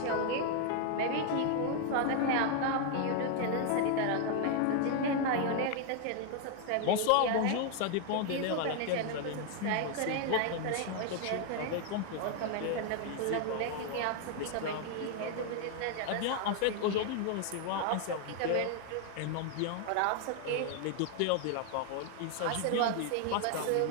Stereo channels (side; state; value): both; different; correlation 0.00